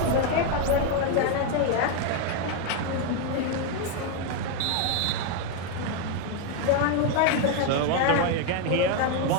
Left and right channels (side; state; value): both; different; correlation 0.01